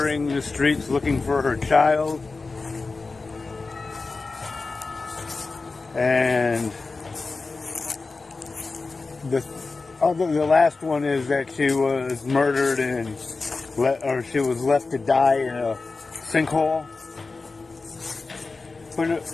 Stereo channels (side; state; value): right; quieter; 3.9 dB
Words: the streets looking for her child. And the last one is that she was murdered and she was left to die in a sinkhole. But